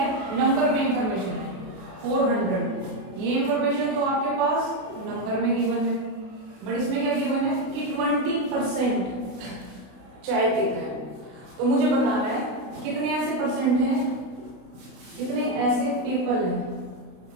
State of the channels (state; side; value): late; left; 32 ms